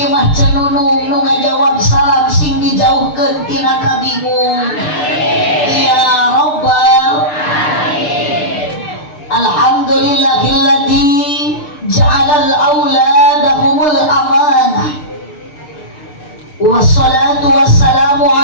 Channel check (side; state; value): right; late; 6.7 ms